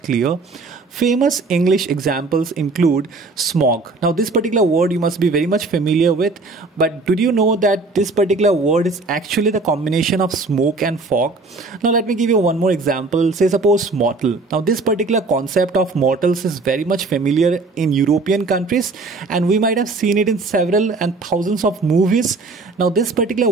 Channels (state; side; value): quieter; left; 3.6 dB